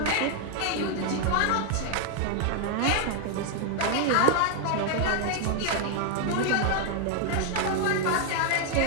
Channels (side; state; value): both; different; correlation 0.00